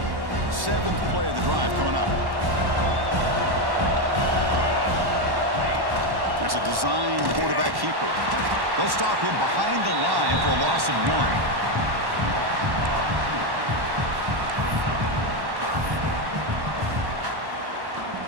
Seventh play of the drive coming up. There's a designed quarterback keeper. They'll stop him behind the line for a loss of 1.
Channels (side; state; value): left; late; 1.1 ms